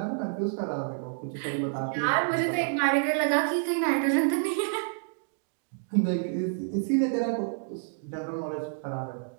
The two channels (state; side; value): silent; left; digital silence